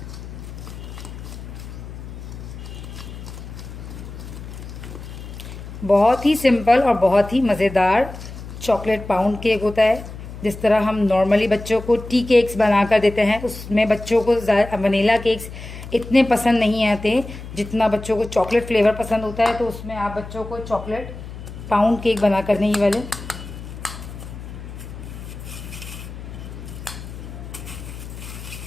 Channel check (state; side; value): noise; left; hum, 12 dB below the sound